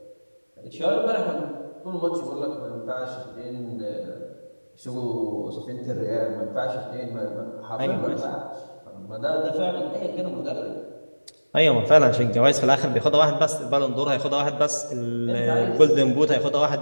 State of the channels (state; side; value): inverted; both; correlation -1.00